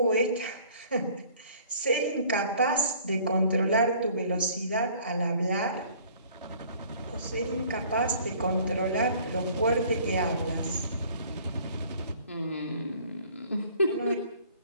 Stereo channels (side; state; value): both; inverted; correlation -0.54